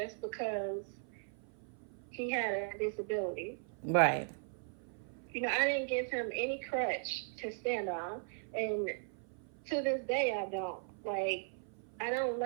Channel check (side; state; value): left; silent; 53 dB below the other